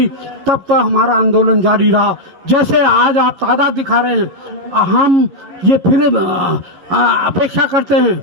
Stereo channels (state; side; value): late; left; 11 ms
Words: तब तक हमारा आंदोलन जारी रहा। जैसे आज आप तादाद दिखा रहे हैं, हम ये फिर अपेक्षा करते